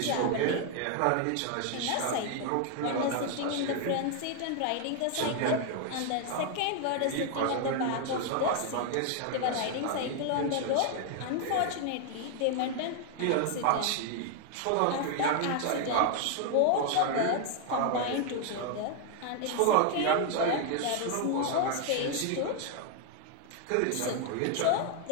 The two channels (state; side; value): different; both; correlation 0.00